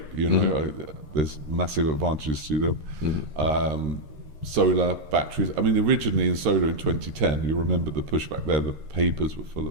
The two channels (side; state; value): left; late; 13 ms